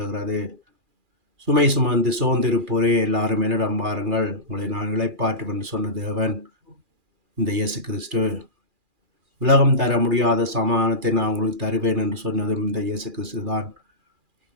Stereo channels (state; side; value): late; left; 2.4 ms